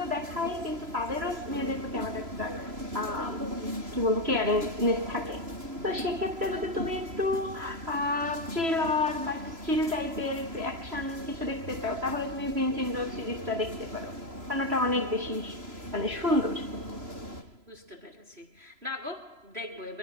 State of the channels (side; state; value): left; late; 3.0 ms